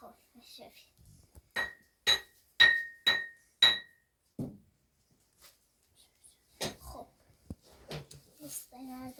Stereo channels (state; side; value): identical; both; correlation 1.00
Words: خب شفی خب